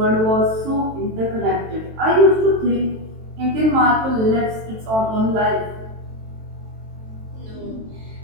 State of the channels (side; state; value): left; late; 23 ms